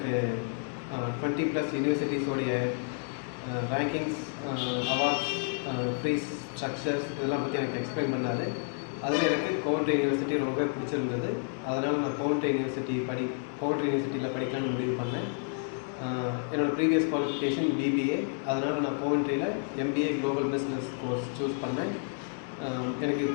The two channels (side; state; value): right; silent; 58 dB below the other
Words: 20+ யூனிவர்சிட்டிஸோடைய ரேங்கிங்ஸ், அவார்ட்ஸ், ஃபீஸ் ஸ்ட்ரக்சர்ஸ் இதெல்லாம் பற்றி எனக்கு எக்ஸ்பிளைன் பண்ணார். அதில் எனக்கு கோவன்ட்ரி யூனிவர்சிட்டி ரொம்ப பிடிச்சிருந்தது. அதனால் நான் கோவன்ட்ரி யூனிவர்சிட்டியில் படிக்கலாம்னு முடிவு பண்ணேன். என்னோடய ப்ரீவியஸ் குவாலிஃபிகேஷன் BBA. அதனால் நான் கோவன்ட்ரியில் MBA global business course choose பண்ணேன். எனக்கு